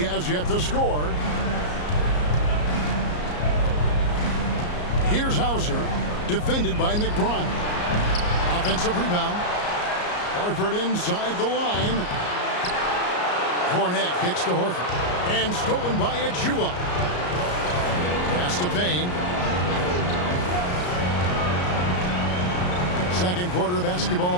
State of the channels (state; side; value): late; right; 34 ms